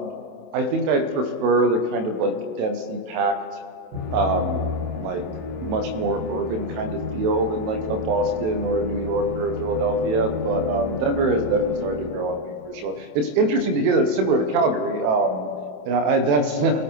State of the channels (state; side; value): late; left; 27 ms